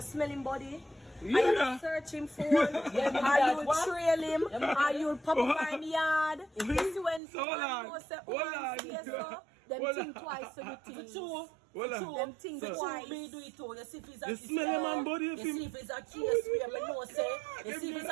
smell him body. Yeah. Are you search him for? Are you trail him? Are you pop up in the yard? You see when someone say, oh, them think twice to do things. Them think twice. Me do it too. You see if it's a you smell man body. You see if it's a case where me know say. You see if it's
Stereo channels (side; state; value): left; drops out; at 7.2 s